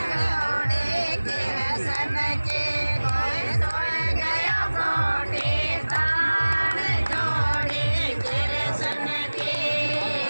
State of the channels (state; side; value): inverted; both; correlation -1.00